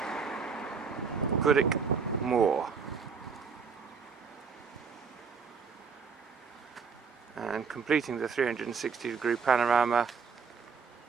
Goodwick Moor. And completing the 360-degree panorama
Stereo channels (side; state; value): left; quieter; 5.7 dB